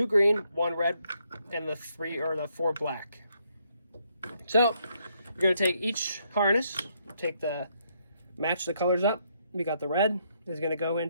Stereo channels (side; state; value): both; inverted; correlation -0.74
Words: green, 1 red, and the 4 black. So you're going to take each harness, match the colors up. We got the red is going to go